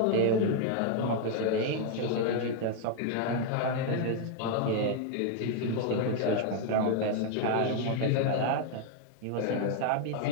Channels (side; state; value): both; different; correlation 0.00